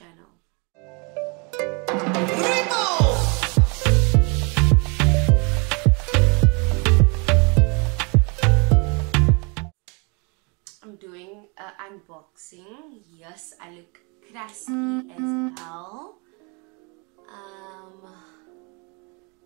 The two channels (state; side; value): quieter; left; 32.3 dB